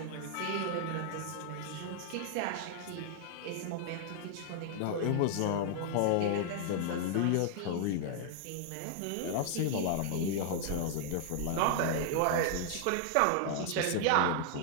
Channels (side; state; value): both; different; correlation -0.01